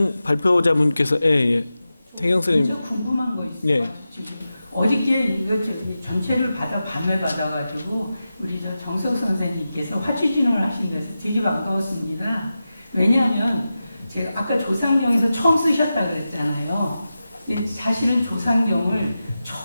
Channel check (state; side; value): inverted; both; correlation -0.92